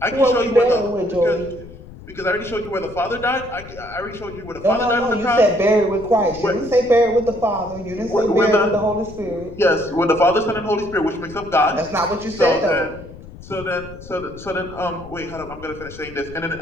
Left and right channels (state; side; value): noise; left; rumble, 16 dB below the sound